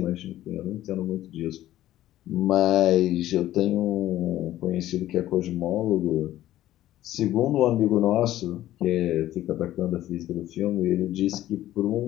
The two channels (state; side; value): quieter; right; 13.9 dB